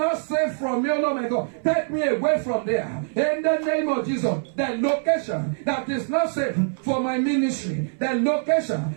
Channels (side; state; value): left; silent; 63 dB below the other